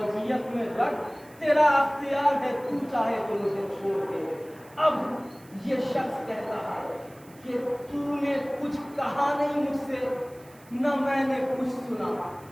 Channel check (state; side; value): noise; right; hiss, 26 dB below the sound